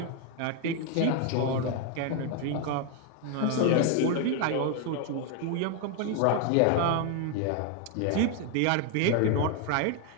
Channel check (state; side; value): different; both; correlation 0.01